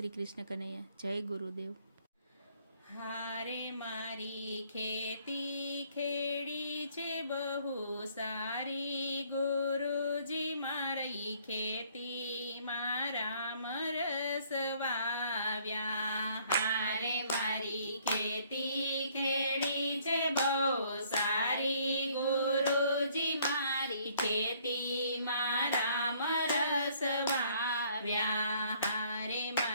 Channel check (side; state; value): both; inverted; correlation -0.62